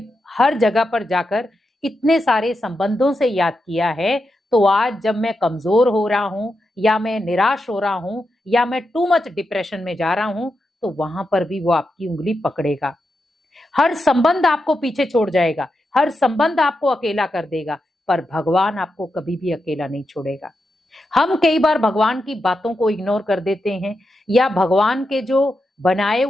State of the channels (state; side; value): normal; both; correlation 0.87